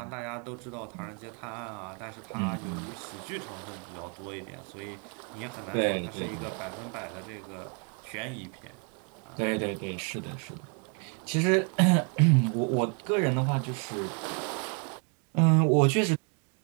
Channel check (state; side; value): quieter; left; 36.9 dB